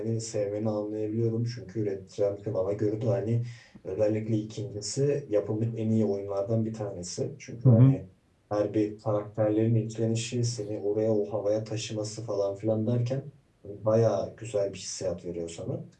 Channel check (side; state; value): both; identical; correlation 1.00